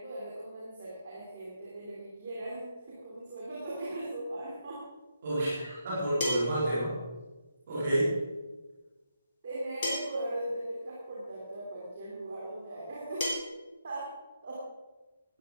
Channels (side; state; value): both; inverted; correlation -0.82